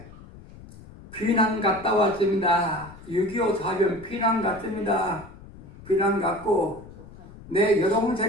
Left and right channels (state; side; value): noise; left; rumble, 19 dB below the sound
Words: 피난 갔다 왔습니다. 6.25 사변 피난 갔습니다. 피난 갔고 내